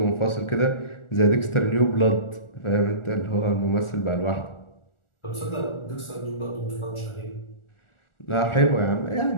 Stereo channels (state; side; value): late; right; 1.4 ms